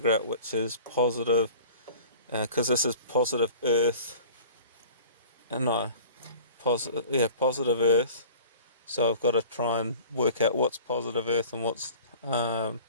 out which is positive, because this is positive earth, no, positive earth. So I've got to try and work out what's positive earth and what's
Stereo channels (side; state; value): both; inverted; correlation -0.44